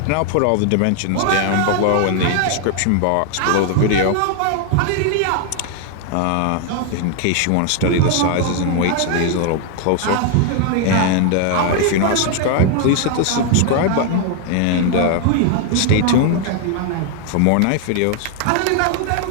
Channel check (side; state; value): both; different; correlation 0.00